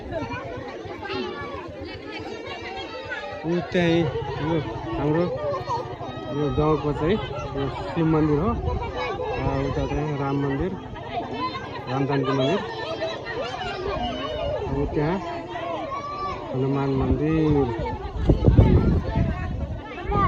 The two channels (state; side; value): identical; both; correlation 1.00